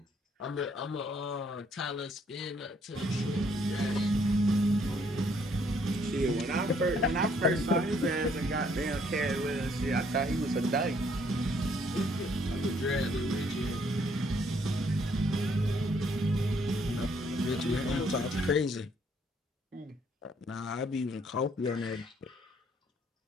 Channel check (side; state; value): both; normal; correlation 0.67